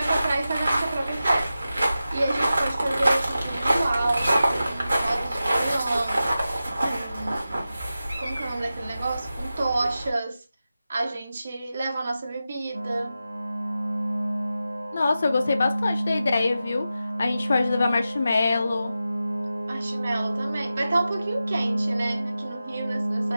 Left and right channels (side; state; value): both; inverted; correlation -0.93